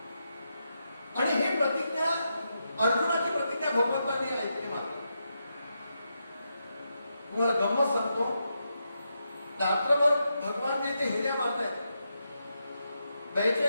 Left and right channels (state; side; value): inverted; both; correlation -0.84